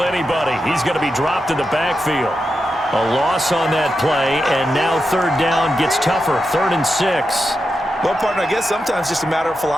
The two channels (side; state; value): both; normal; correlation 0.88